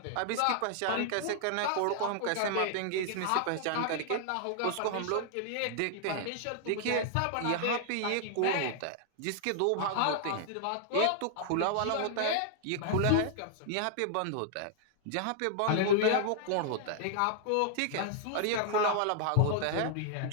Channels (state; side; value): different; both; correlation -0.01